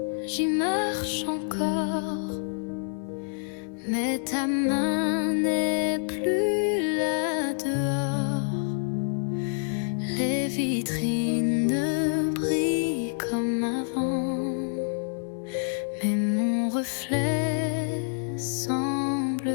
j'y marche encore, mais ta main n'est plus là dehors. Les vitrines ne brillent comme avant, mais mon reflet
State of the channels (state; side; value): silent; right; 60 dB below the other